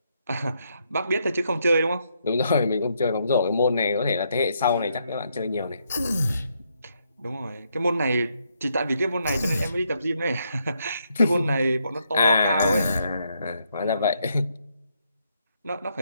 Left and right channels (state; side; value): inverted; both; correlation -0.76